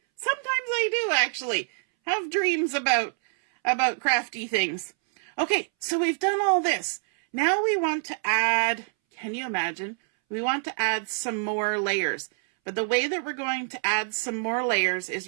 Sometimes I do, actually. Have dreams about crafty things. Okay, so we've done all this. Now we want to add, can you imagine? We want to add some more layers. But the way that we're going to add some more layers is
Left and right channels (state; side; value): silent; left; 61 dB below the other